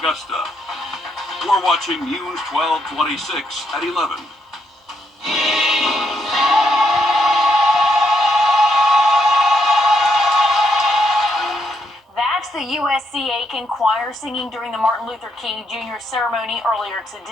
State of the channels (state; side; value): normal; both; correlation 0.76